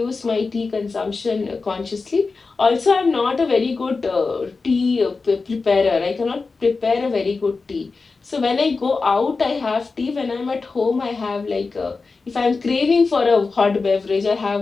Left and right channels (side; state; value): right; quieter; 4.2 dB